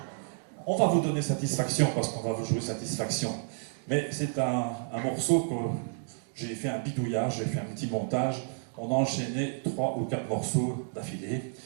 On va vous donner satisfaction parce qu'on va vous jouer satisfaction. Mais c'est un morceau que j'ai fait un bidouillage, j'ai fait un petit montage. On a enchaîné 3 ou 4 morceaux d'affilée.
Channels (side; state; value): left; silent; digital silence